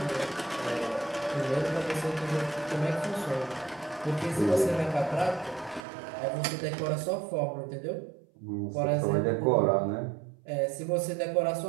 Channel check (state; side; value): drops out; left; at 5.8 s